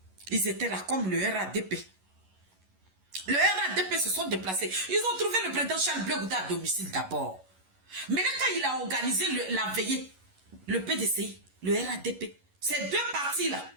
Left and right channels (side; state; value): left; late; 11 ms